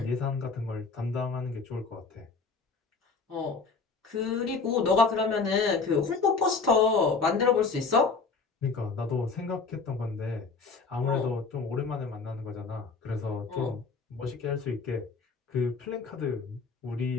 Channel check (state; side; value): quieter; right; 4.5 dB